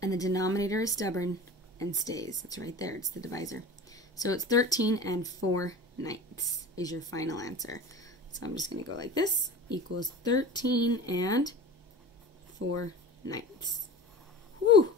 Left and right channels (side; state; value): both; normal; correlation 0.36